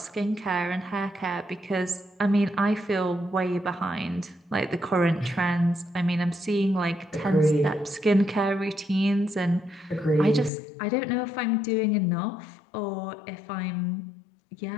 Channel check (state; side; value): drops out; right; at 10.5 s